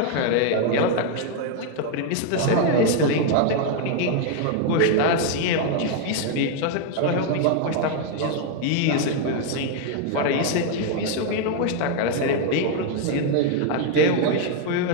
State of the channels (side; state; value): both; different; correlation 0.01